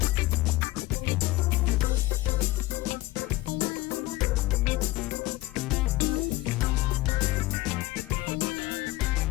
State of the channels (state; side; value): quieter; right; 18.1 dB